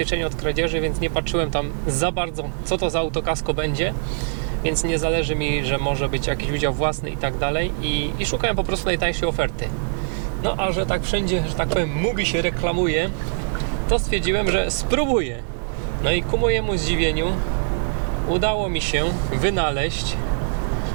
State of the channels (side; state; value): left; silent; digital silence